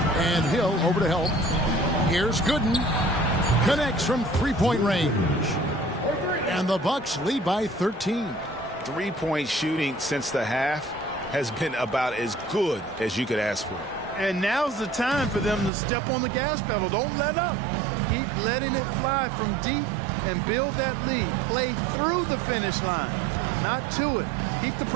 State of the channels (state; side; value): drops out; left; at 15.7 s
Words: And Hill over to help. Here's Gooden. Connects from three-point range. And the Bucks lead by 13. Three-point shooting since the half has been about as good as you could ask for. And now's the time for them to step on the gas pedal. Don't let up. Keep letting it fly from deep and build that lead. Play through the finish line, not to it. Keep the